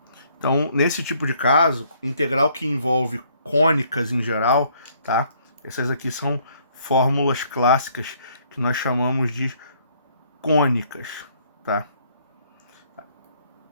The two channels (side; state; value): both; inverted; correlation -0.65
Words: Então, nesse tipo de caso, integral que envolve cônicas em geral, tá? Essas aqui são fórmulas clássicas que nós chamamos de cônicas, tá?